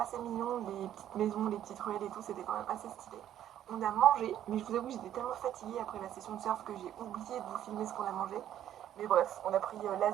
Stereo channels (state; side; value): quieter; left; 11.2 dB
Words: mignon, les petites maisons, les petites ruelles et tout, c'était quand même assez stylé. On a mangé, mais je vous avoue j'étais tellement fatiguée après la session de surf que j'ai oublié de vous filmer ce qu'on a mangé. Mais bref, on a pris